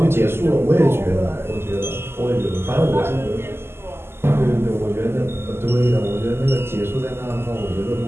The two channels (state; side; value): late; left; 0.12 ms